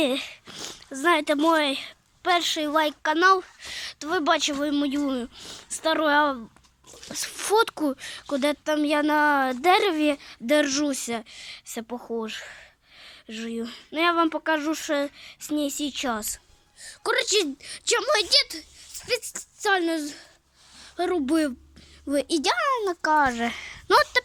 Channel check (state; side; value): identical; both; correlation 1.00